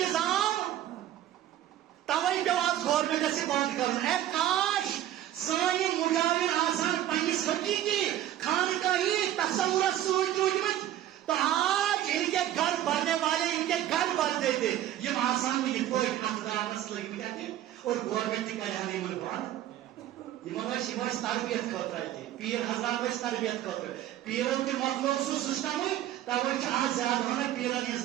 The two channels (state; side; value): quieter; left; 12.5 dB